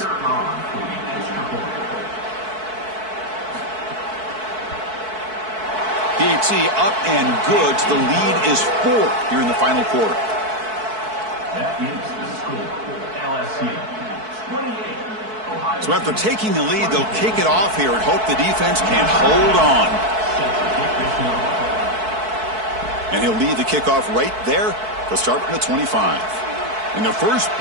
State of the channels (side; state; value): left; late; 4.6 ms